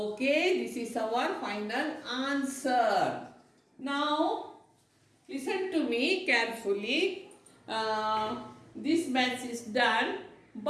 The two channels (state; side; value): identical; both; correlation 1.00